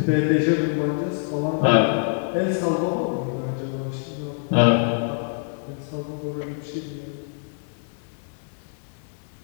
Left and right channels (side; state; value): right; silent; 62 dB below the other